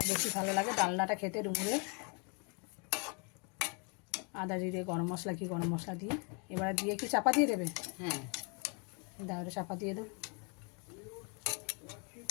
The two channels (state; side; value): quieter; right; 35.2 dB